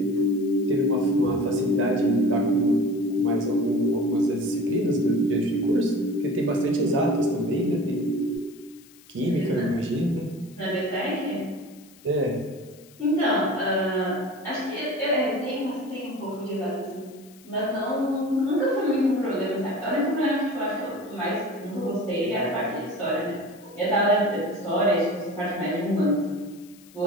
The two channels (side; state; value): left; noise; hiss, 25 dB below the sound